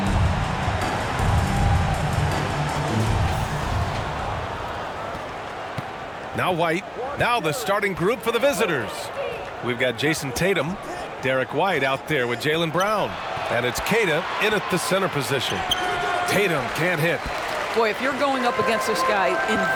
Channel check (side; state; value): both; identical; correlation 1.00